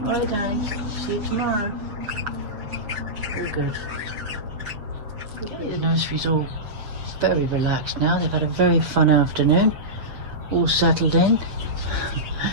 Alright, darling. See you tomorrow. All good. Okay, the nursery's all very relaxed now. They've had a very fun afternoon. All settled in.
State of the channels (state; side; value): late; left; 7.7 ms